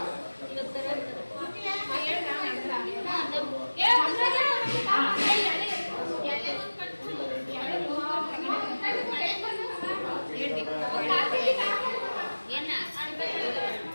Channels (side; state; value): both; inverted; correlation -1.00